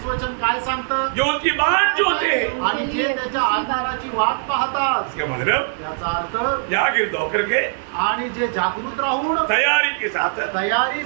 वचन काय सांगतं? जो उसकी बात जो थे, आणि जे त्याच्या आकाराची वाट पाहतात. इसका मतलब याचा अर्थ जागीर होकर के आणि जे जागृत राहून तैयारी के साथ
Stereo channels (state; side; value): silent; left; digital silence